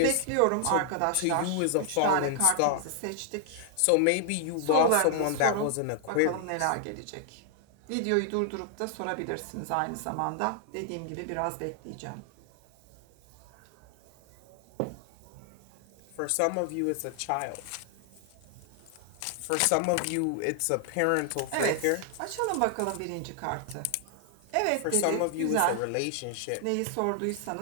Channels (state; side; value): different; both; correlation 0.00